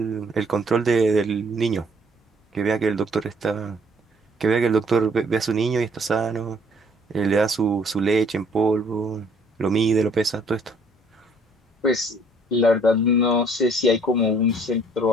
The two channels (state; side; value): normal; both; correlation 0.61